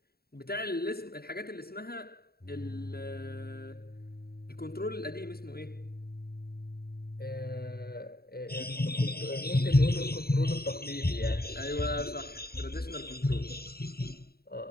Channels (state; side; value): late; right; 0.45 ms